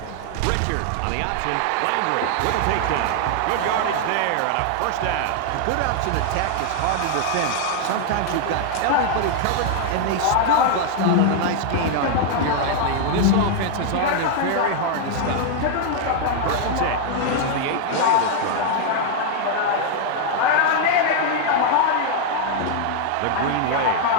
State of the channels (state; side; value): different; both; correlation 0.00